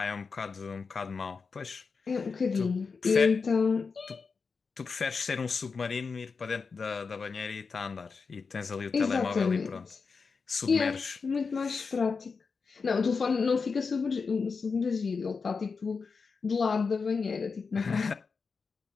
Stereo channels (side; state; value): right; quieter; 5.0 dB